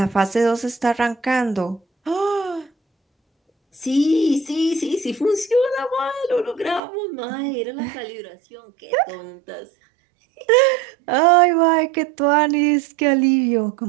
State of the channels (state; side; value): drops out; left; at 6.8 s